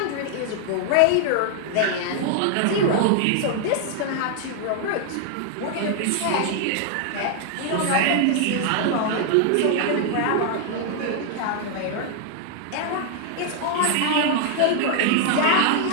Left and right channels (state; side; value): different; both; correlation 0.00